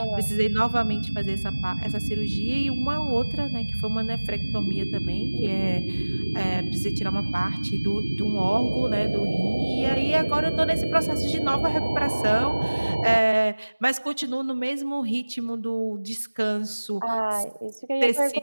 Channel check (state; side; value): inverted; both; correlation -1.00